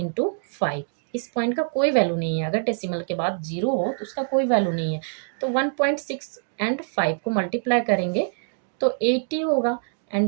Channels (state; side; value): silent; left; digital silence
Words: 5, इस पॉइंट का कोई वैल्यू नहीं है। अगर डेसिमल के बाद 0 हो तो उसका कोई वैल्यू नहीं है। तो 1.6 एंड 5 को मल्टीप्लाई करेंगे तो 80 होगा।